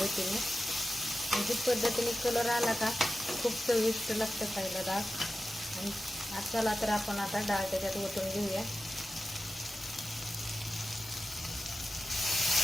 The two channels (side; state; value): both; normal; correlation 0.93